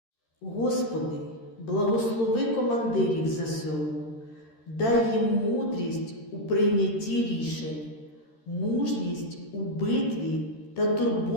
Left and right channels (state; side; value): late; right; 13 ms